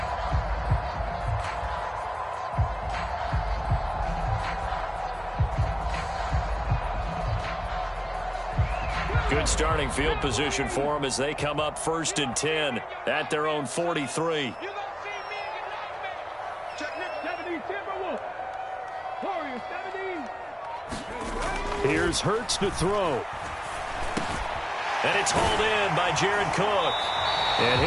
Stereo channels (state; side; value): identical; both; correlation 1.00